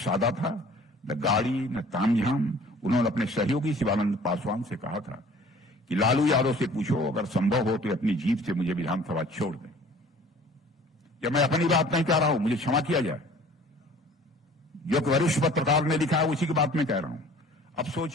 था, न गाड़ी न तामझाम। उन्होंने अपने सहयोगी शिवानंद पासवान से कहा था कि लालू यादव से पूछो, अगर संभव हो तो अपनी जीप से मुझे विधानसभा छोड़ दें। क्या मैं अपनी बात नहीं कह रहा हूं, मुझे क्षमा किया जाए। जो कि वरिष्ठ पत्रकार ने लिखा है उसी की बात मैं कह रहा हूं। अब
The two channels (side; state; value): both; normal; correlation 0.50